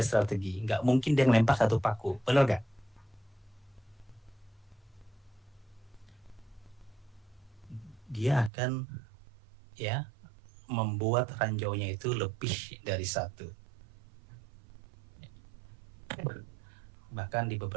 strategi. Nggak mungkin dia ngelempar satu paku, bener nggak? Dia akan, ya, membuat ranjaunya itu lebih dari satu. Bahkan di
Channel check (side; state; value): left; drops out; at 8.5 s